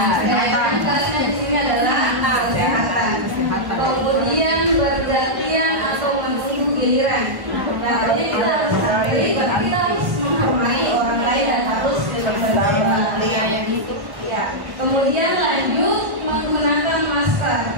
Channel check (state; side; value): late; left; 1.1 ms